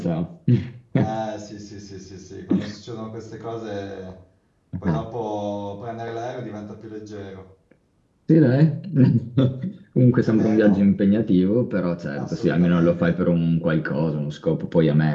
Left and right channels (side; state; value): both; identical; correlation 1.00